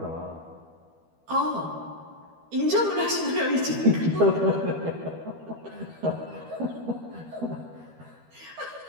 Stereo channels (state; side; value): late; left; 12 ms